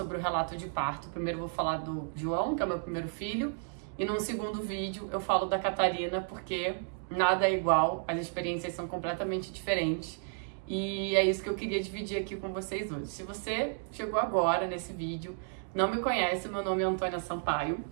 o relato de parto. Primeiro eu vou falar do João, que é o meu primeiro filho, e num segundo vídeo eu falo da Catarina, porque nada é igual, as experiências são completamente diferentes. E é isso que eu queria dividir aqui com vocês hoje. Se você chegou agora nesse vídeo, não me conhece, meu nome é Antônia Sampaio.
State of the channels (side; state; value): left; silent; digital silence